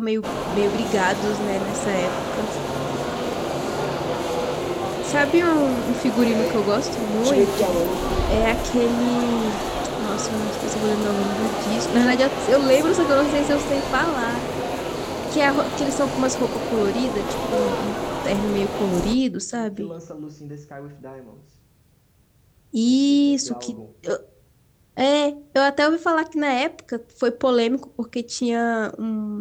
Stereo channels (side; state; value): both; identical; correlation 1.00